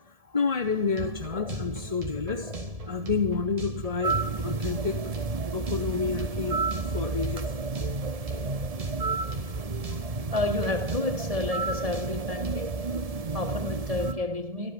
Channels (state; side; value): late; left; 1.7 ms